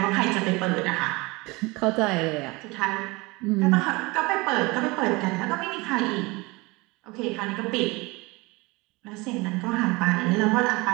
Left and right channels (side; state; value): left; quieter; 24.1 dB